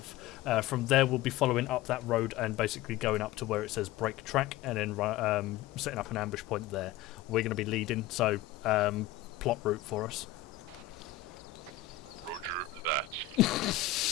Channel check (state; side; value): quieter; right; 12.4 dB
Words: From there, we'll be following up that road and basically going up to where it says break track and then setting up an ambush point there. We're going to be leading, so plot route for us. Roger that.